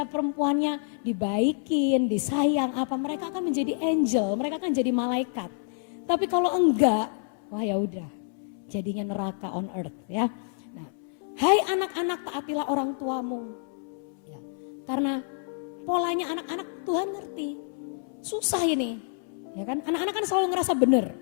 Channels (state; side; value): silent; right; 59 dB below the other